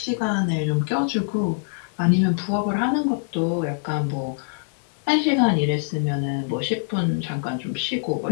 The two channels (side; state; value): right; silent; digital silence